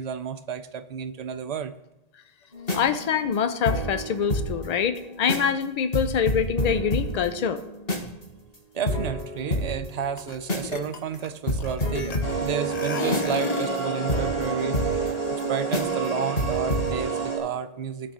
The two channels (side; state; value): right; late; 1.8 ms